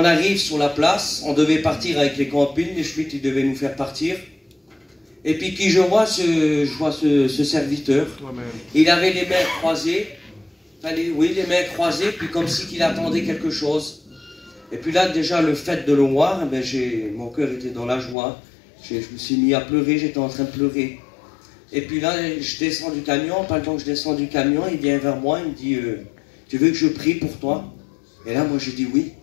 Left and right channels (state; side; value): drops out; right; at 18.2 s